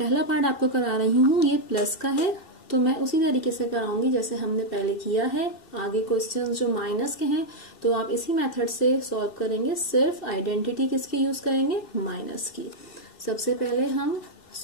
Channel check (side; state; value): right; late; 2.7 ms